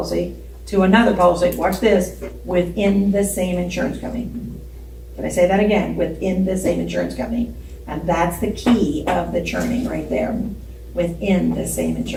to another policy, watch this, within the same insurance company. Can I say that again? Within the same insurance company. And that's the key of the churning right there, within the same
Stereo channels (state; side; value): identical; both; correlation 1.00